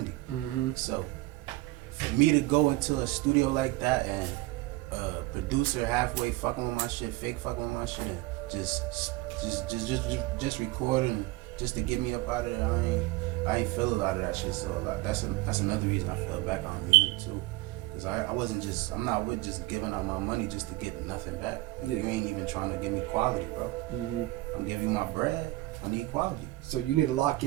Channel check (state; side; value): quieter; left; 19.7 dB